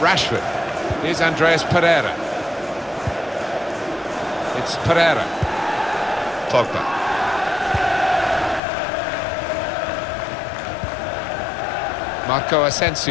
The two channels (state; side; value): drops out; right; at 8.6 s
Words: Rashford. Here's Andreas Pereira. It's Pereira. Pogba. Marco